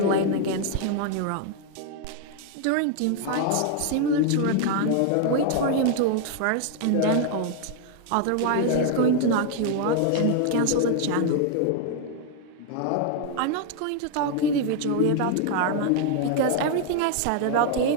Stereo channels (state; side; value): different; both; correlation 0.00